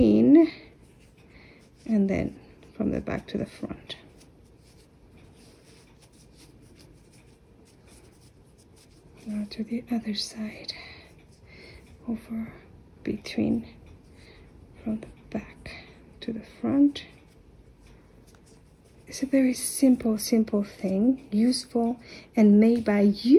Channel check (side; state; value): both; identical; correlation 1.00